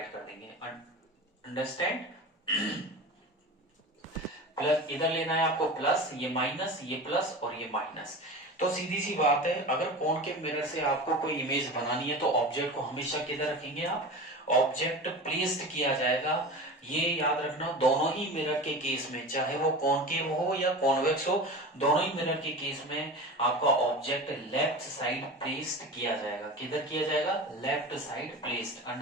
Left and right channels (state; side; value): normal; both; correlation 0.31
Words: कर देंगे। अंडरस्टैंड? प्लस इधर लेना है आपको प्लस, ये माइनस, ये प्लस और ये माइनस। तो सीधी सी बात है, अगर कॉनकेव मिरर से आपको कोई इमेज बनानी है तो ऑब्जेक्ट को हमेशा किधर रखेंगे आप? ऑब्जेक्ट प्लेस्ड किया जाएगा। ये याद रखना, दोनों ही मिरर के केस में, चाहे वो कॉनकेव हो या कॉन्वेक्स हो, दोनों ही मिरर के केस में आपका ऑब्जेक्ट लेफ्ट साइड प्लेस्ड किया जाएगा। किधर किया जाएगा? Left side placed.